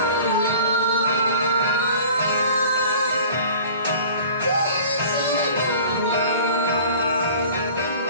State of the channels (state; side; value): inverted; both; correlation -0.45